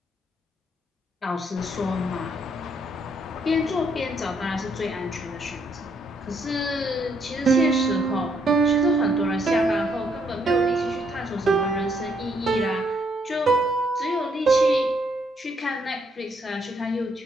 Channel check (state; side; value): normal; both; correlation 0.72